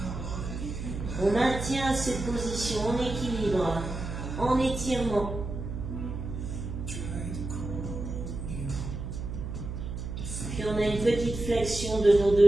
on maintient cette position en équilibre, en étirement. Puis on a une petite flexion de nos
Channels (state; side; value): noise; right; hum, 6 dB below the sound